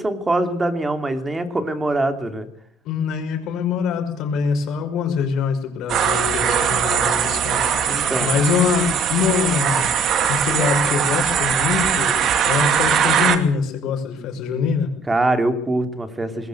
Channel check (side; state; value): both; normal; correlation 0.60